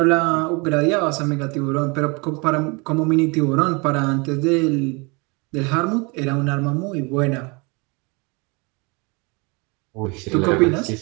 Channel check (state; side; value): quieter; left; 29.1 dB